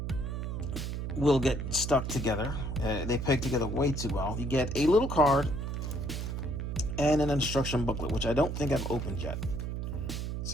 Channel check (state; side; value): noise; right; hum, 3 dB below the sound